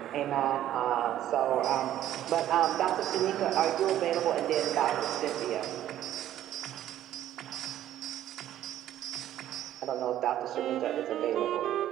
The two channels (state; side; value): quieter; left; 12.3 dB